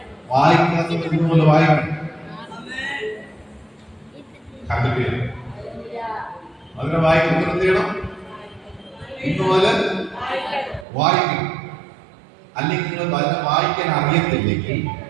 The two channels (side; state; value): left; drops out; at 10.9 s